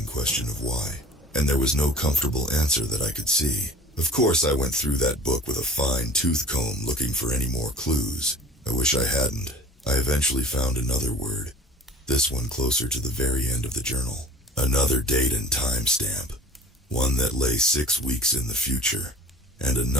question of why, and there was no comfortable answer that I could see. Of course I went through that book with a fine tooth comb looking for any more clues. I wish I hadn't. I eventually found another word, this one closer to the very end of the journal. Another date and time stamp, one that lay 6 weeks in the future, and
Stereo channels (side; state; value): both; normal; correlation 0.43